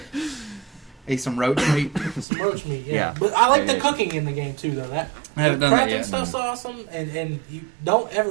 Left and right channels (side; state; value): left; drops out; at 2.2 s